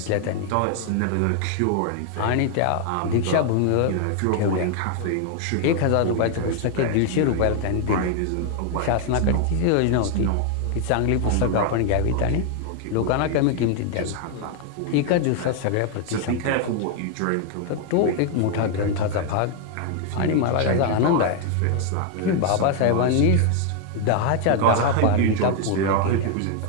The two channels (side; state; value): both; different; correlation 0.00